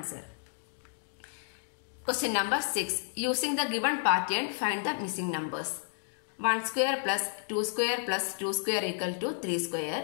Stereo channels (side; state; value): right; silent; digital silence